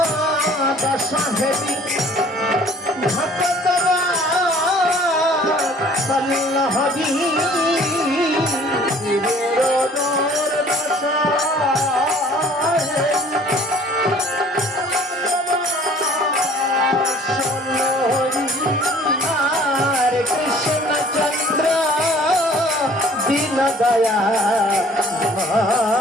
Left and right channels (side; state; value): both; normal; correlation 0.53